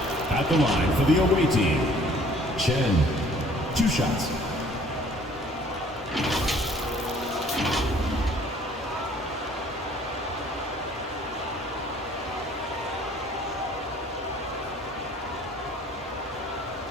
At the line for the away team, Chen. 2 shots.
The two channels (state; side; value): normal; both; correlation 0.56